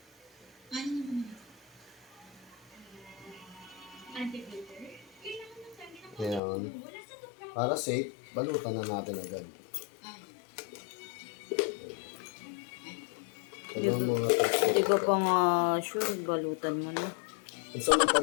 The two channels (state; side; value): drops out; right; at 6.4 s